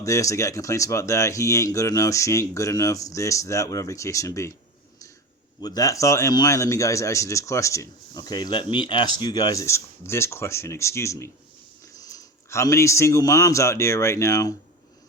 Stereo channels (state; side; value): normal; both; correlation 0.27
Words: this, they got complaints about that. He ain't good enough, she ain't good enough, this, that, whatever the case may be. With that thought in mind, let me guys ask you this question. Okay, let me ask you guys this question, excuse me. How many single moms out there right now